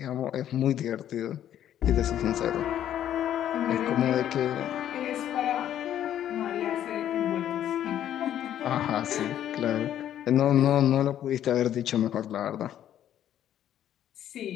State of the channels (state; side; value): quieter; right; 11.0 dB